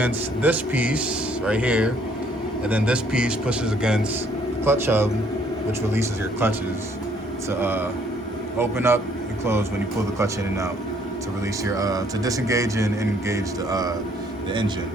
this piece right here, and then this piece pushes against the clutch hub, which releases your clutches to open up and close when you pull the clutch in and out, to release your to disengage and engage the engine.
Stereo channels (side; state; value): both; normal; correlation 0.64